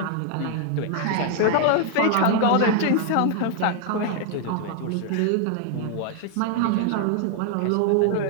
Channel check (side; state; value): both; different; correlation 0.00